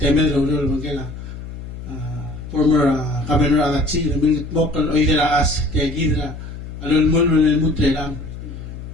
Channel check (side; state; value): left; noise; hum, 11 dB below the sound